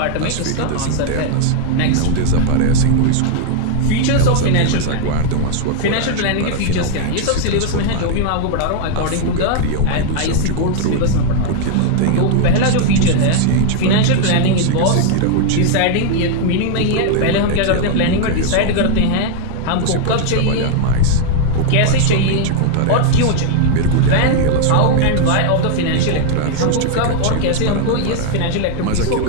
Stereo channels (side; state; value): both; different; correlation 0.00